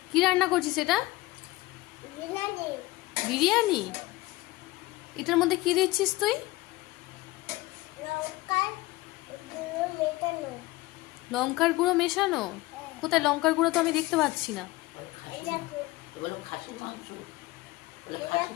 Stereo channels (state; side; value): quieter; right; 19.7 dB